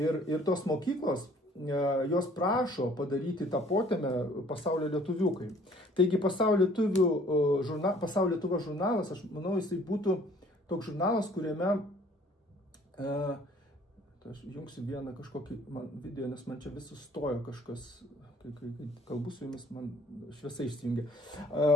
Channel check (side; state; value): both; normal; correlation 0.56